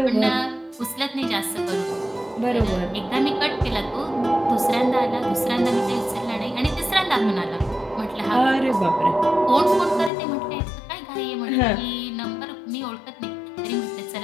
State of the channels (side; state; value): right; drops out; at 10.1 s